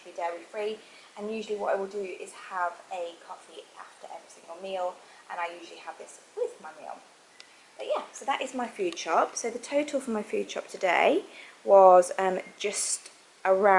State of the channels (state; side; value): identical; both; correlation 1.00